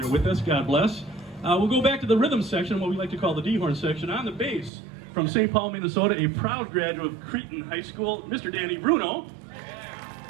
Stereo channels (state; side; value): drops out; left; at 4.7 s